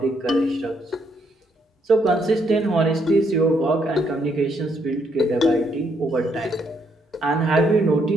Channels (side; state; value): both; normal; correlation 0.73